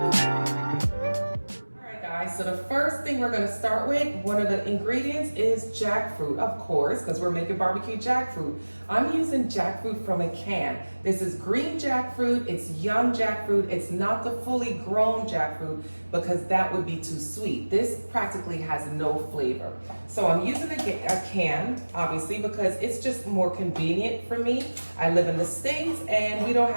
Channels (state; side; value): inverted; both; correlation -1.00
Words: So the first thing we're going to start with, one of the ingredients is jackfruit, of course, because we're making barbecue jackfruit. I'm using jackfruit from a can. This is green jackfruit, it's young jackfruit, it's not the fully grown jackfruit because that would be too sweet. This practically has no flavor. So I'm using a can, obviously, because it's just more convenient for me. I live in the States and we don't